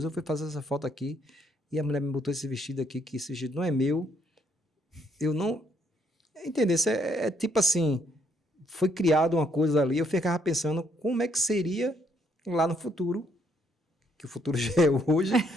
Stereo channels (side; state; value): both; normal; correlation 0.70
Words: eu fui fazer essa foto aqui e a mulher me botou esse vestido aqui, que esse vestido não é meu. Eu não... Entendeu? Tipo assim, foi criada uma coisa ali, eu ficava pensando como é que seria lá no futuro, que o futuro já é hoje,